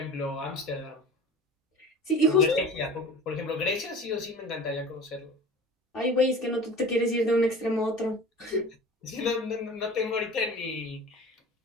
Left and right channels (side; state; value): both; normal; correlation 0.39